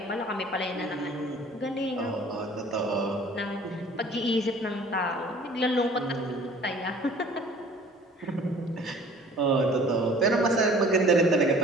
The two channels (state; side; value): normal; both; correlation 0.51